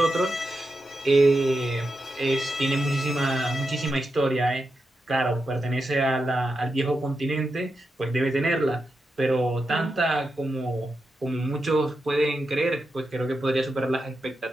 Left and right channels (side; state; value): both; normal; correlation 0.88